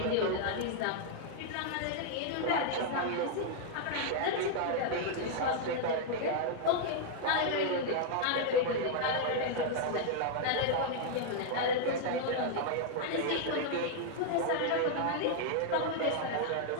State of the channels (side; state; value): both; different; correlation 0.00